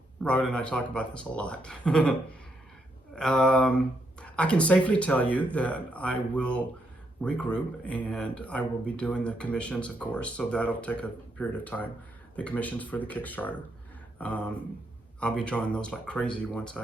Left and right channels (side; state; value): both; normal; correlation 0.78